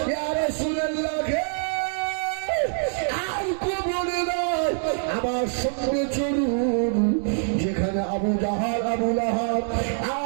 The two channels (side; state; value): left; silent; digital silence